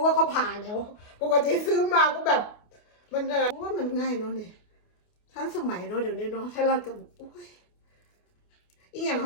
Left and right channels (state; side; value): late; right; 28 ms